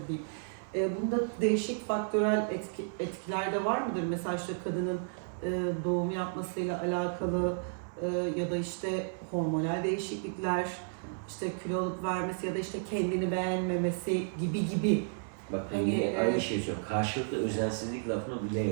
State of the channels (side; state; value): left; silent; 56 dB below the other